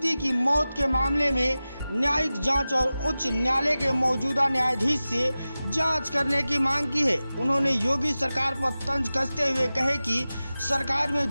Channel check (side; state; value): both; inverted; correlation -0.96